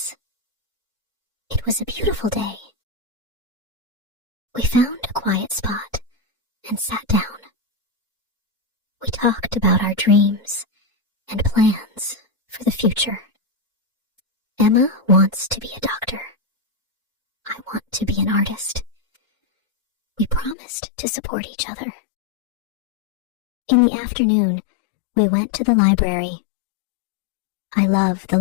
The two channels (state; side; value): drops out; right; at 20.6 s